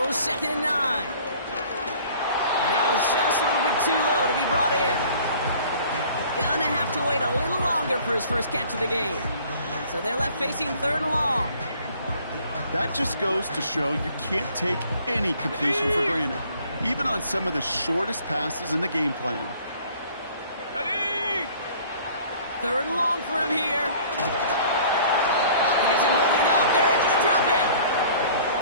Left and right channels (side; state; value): both; inverted; correlation -0.52